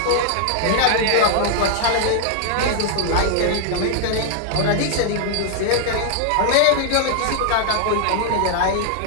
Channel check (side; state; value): both; different; correlation 0.00